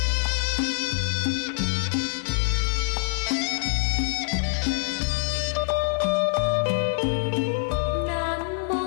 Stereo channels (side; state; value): right; silent; 62 dB below the other